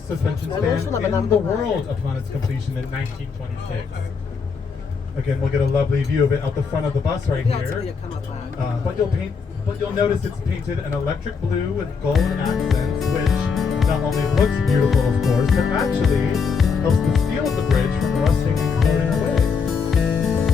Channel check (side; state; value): right; quieter; 5.5 dB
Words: suspension span in the world upon its completion in 1926. Again, we'll get a lovely view of it out the front of the bus right here. But you'll notice it's painted an electric blue with gold accents, which not only looks beautiful, of course, but actually helps the steel of the bridge from rusting and corroding away.